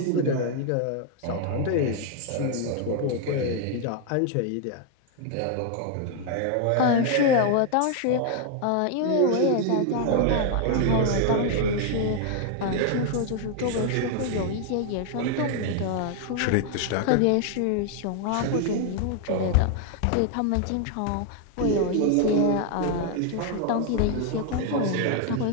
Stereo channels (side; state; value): both; different; correlation 0.00